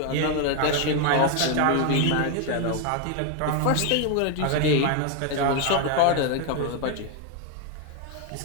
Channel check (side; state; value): both; different; correlation 0.01